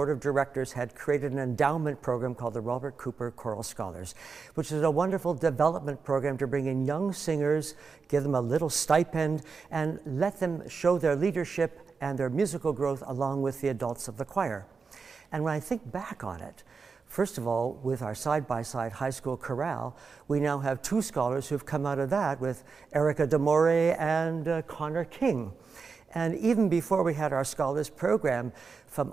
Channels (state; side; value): quieter; left; 5.0 dB